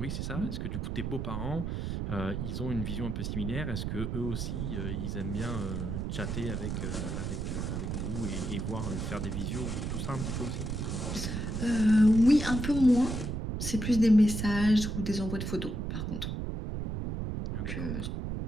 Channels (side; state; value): right; noise; rumble, 3 dB below the sound